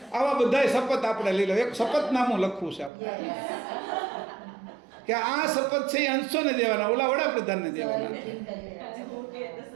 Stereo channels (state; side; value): drops out; left; at 2.9 s